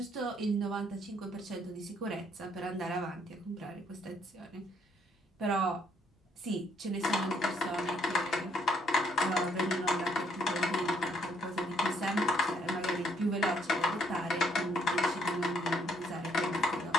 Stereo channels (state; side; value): normal; both; correlation 0.67